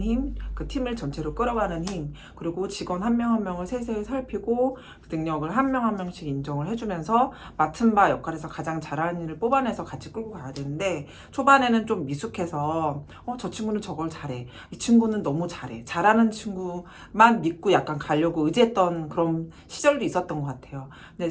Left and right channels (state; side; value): identical; both; correlation 1.00